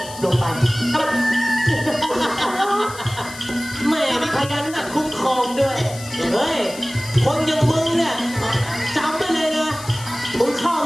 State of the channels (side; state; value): left; noise; hiss, 15 dB below the sound